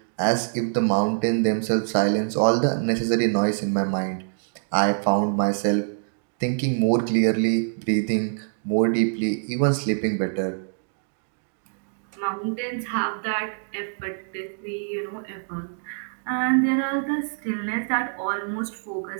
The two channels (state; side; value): silent; left; digital silence